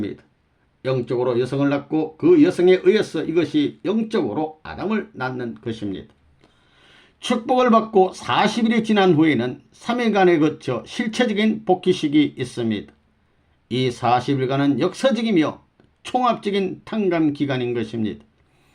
영적으로 여성을 낳고 그 여성에 의해서 이것이 영적으로 아담을 낳는 것입니다. 축복을 받고 40일이 지난 후에는 3일간에 거쳐 실체적인 복귀식이 있습니다. 이 40일간은 역사적이며 총합적인 탕감 기간인 것입니다.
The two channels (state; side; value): identical; both; correlation 1.00